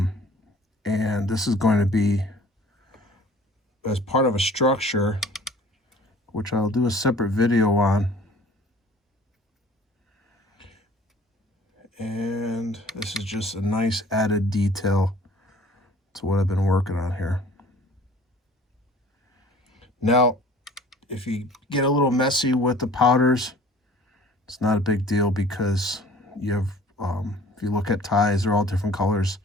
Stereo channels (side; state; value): both; normal; correlation 0.50